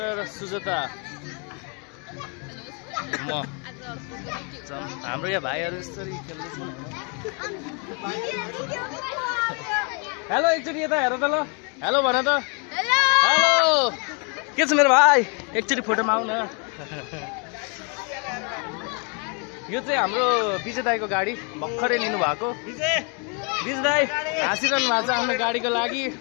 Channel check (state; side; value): quieter; right; 35.9 dB